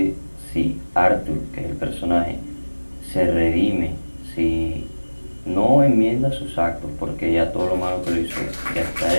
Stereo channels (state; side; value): inverted; both; correlation -1.00